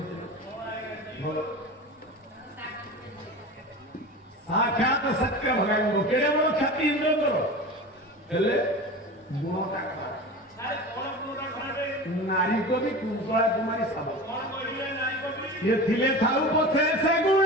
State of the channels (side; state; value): both; normal; correlation 0.31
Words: साक्षात शक्र भगांग केड़े बड़ ख्याति इंद्र गुणटा खराब नारी को भी कुंतला कुमारी सब ये थिले थाऊ पछे से गुण